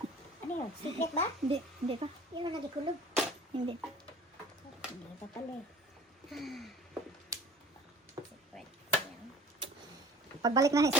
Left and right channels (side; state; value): both; normal; correlation 0.46